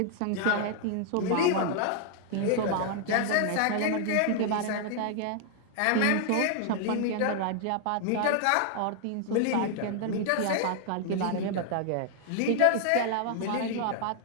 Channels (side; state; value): both; different; correlation 0.00